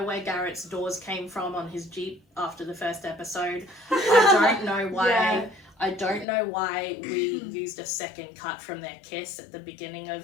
where Garrett's doors came from on his Jeep after the first episode. I don't know why. Yeah. I don't know why we used a second cut from their kiss at the beginning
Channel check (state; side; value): drops out; right; at 6.2 s